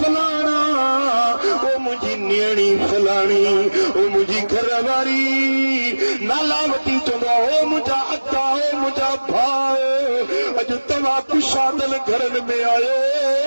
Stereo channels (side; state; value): both; inverted; correlation -1.00